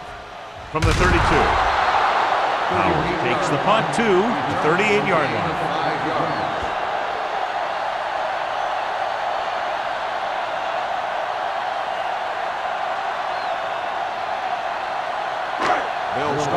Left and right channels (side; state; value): both; identical; correlation 1.00